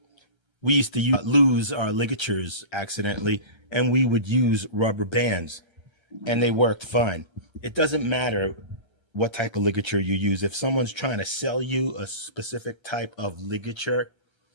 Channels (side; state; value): right; late; 8.7 ms